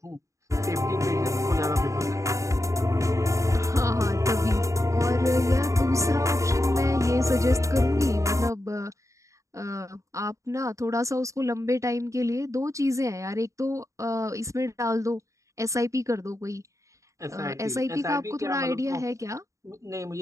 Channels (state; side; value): late; left; 0.15 ms